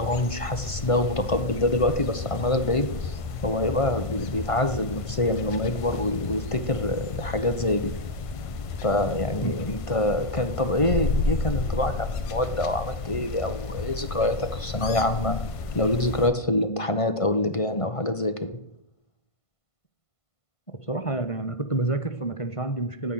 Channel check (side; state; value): right; late; 1.5 ms